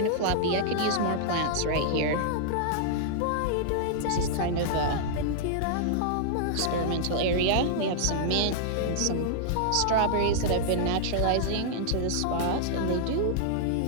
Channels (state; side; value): different; both; correlation -0.01